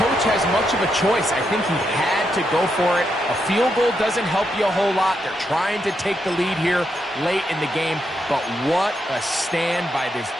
has much of a choice. I think he had to go for it. A field goal doesn't help you a whole lot. They're trying to take the lead here late in the game. But what a stand by this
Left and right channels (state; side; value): normal; both; correlation 0.82